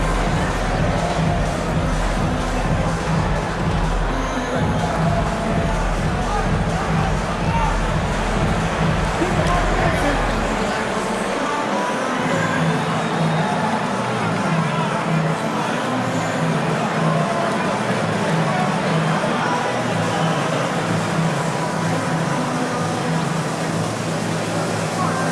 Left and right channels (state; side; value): identical; both; correlation 1.00